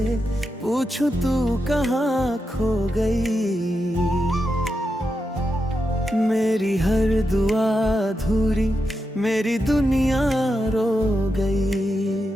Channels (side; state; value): both; normal; correlation 0.87